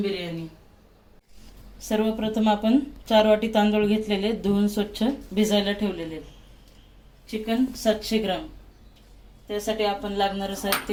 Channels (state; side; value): identical; both; correlation 1.00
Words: बिर्याणी। सर्वप्रथम आपण 4 वाटी तांदूळ घेतलेले, धुवून स्वच्छ भिजायला ठेवलेले। चिकन 700 ग्राम। त्यासाठी आपण लागणारं